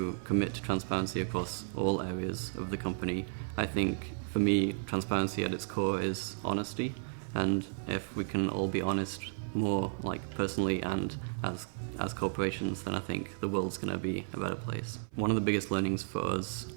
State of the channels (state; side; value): silent; left; 55 dB below the other